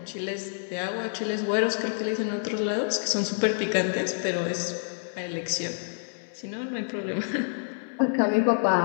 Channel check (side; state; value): right; silent; 60 dB below the other